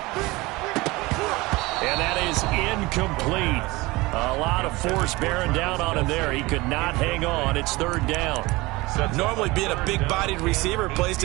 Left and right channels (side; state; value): left; quieter; 21.8 dB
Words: And that is incomplete. A lot of force bearing down on him there. He could not hang on. It's third down. Normally being a big-bodied receiver plays